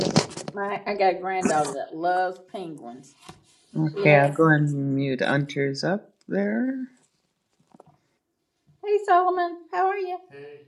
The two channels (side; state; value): both; identical; correlation 1.00